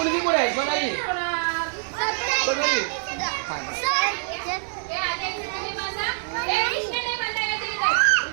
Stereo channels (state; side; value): silent; left; 62 dB below the other